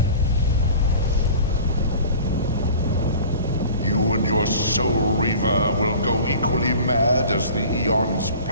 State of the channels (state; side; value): inverted; both; correlation -0.42